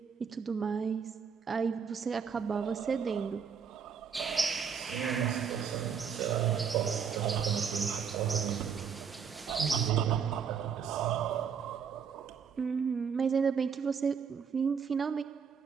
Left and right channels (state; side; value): quieter; left; 6.7 dB